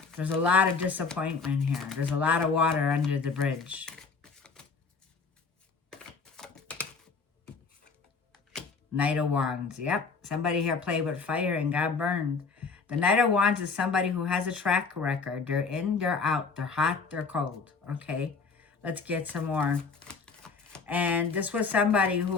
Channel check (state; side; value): quieter; right; 4.7 dB